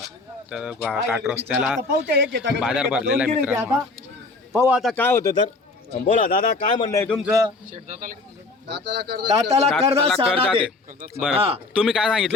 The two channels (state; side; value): quieter; right; 3.5 dB